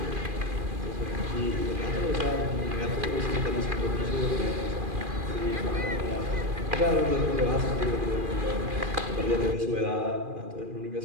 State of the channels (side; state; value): left; late; 2.4 ms